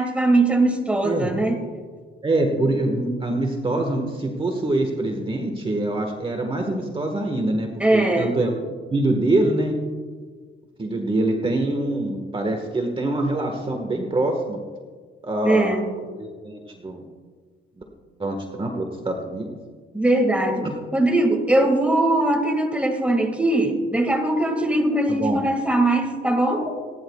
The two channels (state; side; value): normal; both; correlation 0.77